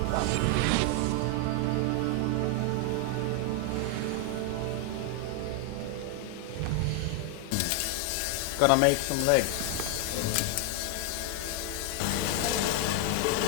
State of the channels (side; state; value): both; different; correlation 0.00